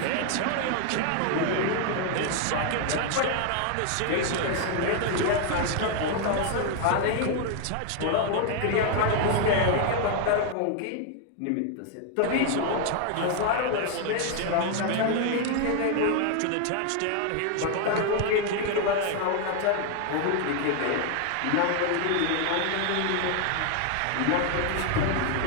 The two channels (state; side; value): different; both; correlation 0.00